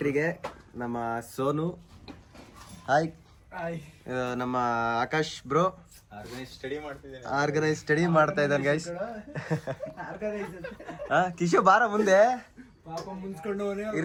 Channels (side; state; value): both; identical; correlation 1.00